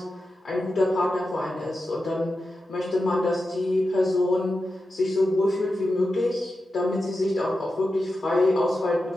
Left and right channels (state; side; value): normal; both; correlation 0.91